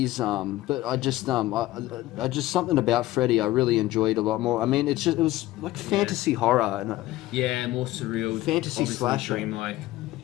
but I just something about Freddy I really enjoyed a lot more. I mean, it was like fantasy horror and Yeah, more surreal. Fantasy obviously slasher. dreamlike.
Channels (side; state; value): right; quieter; 16.5 dB